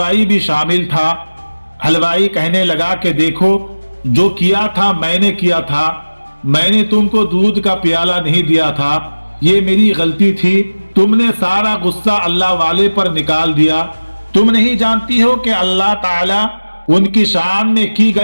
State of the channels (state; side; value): inverted; both; correlation -1.00